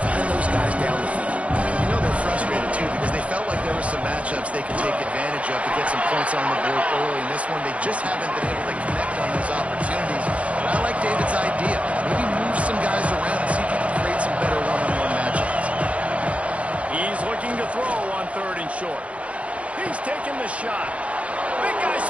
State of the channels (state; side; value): late; left; 0.064 ms